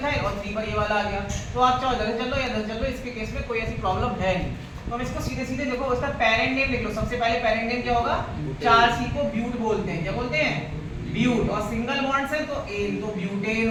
और 3 पर ये वाला आ गया। तो आप चाहो इधर से चल लो या इधर से चल लो, इसके केस में कोई ऐसी प्रॉब्लम है नहीं। तो हम इसको सीधे सीधे देखो, उसका पेरेंट नेम लिख लो। सबसे पहले पेरेंट नेम क्या होगा? 4C को ब्यूट बोलते हैं। क्या बोलते हैं? ब्यूट। और सिंगल बॉन्ड से तो एन, तो ब्यूटेन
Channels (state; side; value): identical; both; correlation 1.00